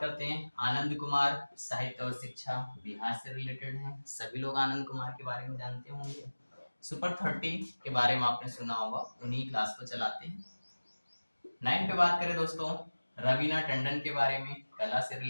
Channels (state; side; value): inverted; both; correlation -1.00